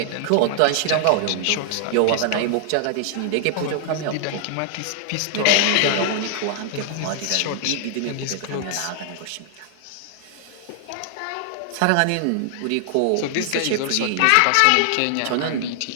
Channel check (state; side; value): different; both; correlation 0.00